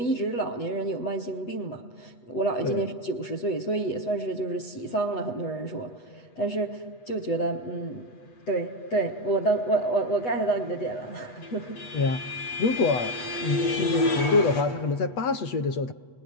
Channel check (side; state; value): right; late; 8.2 ms